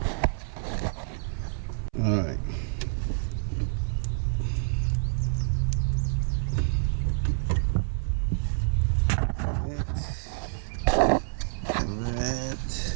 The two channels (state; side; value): silent; left; 60 dB below the other